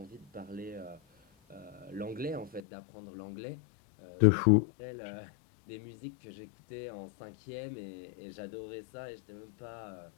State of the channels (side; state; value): right; drops out; at 2.6 s